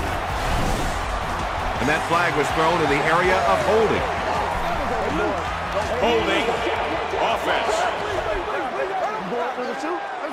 And that flag was thrown in the area of holding. Holding offense.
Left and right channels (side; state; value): both; identical; correlation 1.00